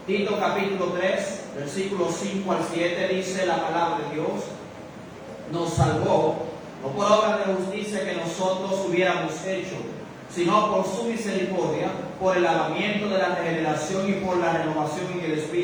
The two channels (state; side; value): identical; both; correlation 1.00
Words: Tito capítulo 3, versículos 5 al 7 dice la palabra de Dios: nos salvó, no por obra de justicia que nosotros hubiéramos hecho, sino por su misericordia, por el lavamiento de la regeneración y por la renovación en el